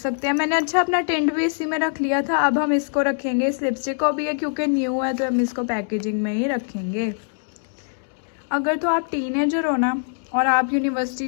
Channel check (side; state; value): right; silent; 64 dB below the other